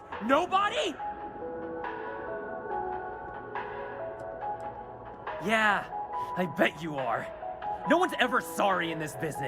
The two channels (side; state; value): both; identical; correlation 1.00